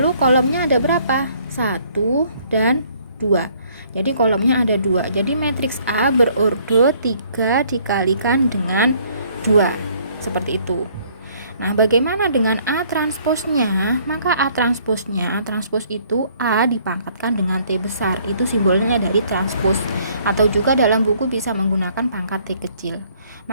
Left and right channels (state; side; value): inverted; both; correlation -0.62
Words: kolomnya ada berapa? 1 dan 2. Jadi kolomnya ada 2. Jadi matriks A berordo 3 dikalikan dengan 2. Seperti itu. Nah, bagaimana dengan A transposnya? Maka A transposnya, transpos itu A dipangkatkan dengan T besar. Itu simbolnya dari transpos. Atau juga dalam buku bisa menggunakan pangkat T kecil.